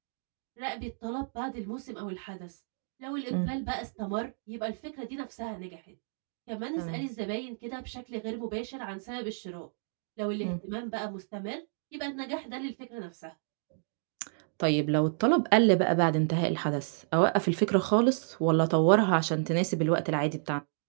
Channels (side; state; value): left; silent; digital silence